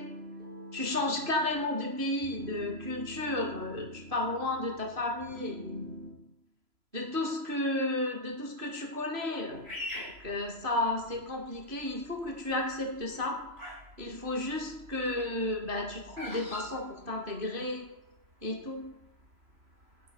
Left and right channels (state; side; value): late; left; 3.0 ms